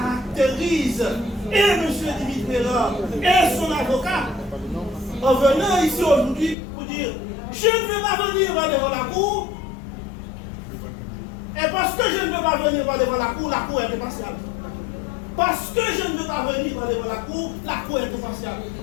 et M. Dimitrieva et son avocat en venant ici aujourd'hui pour dire je ne veux pas venir devant la cour, et parce que je ne veux pas venir devant la cour est impartiale. Parce que je ne veux pas venir devant la cour est impartiale.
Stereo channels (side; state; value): right; drops out; at 6.6 s